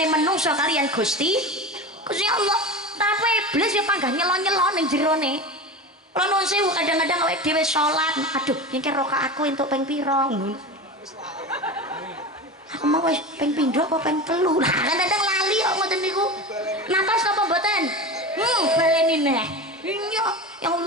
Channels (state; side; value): normal; both; correlation 0.27